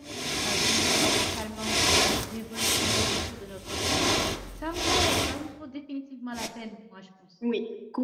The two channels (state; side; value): identical; both; correlation 1.00